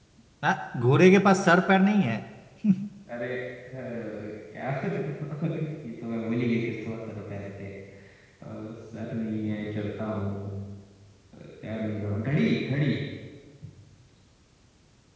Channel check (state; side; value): identical; both; correlation 1.00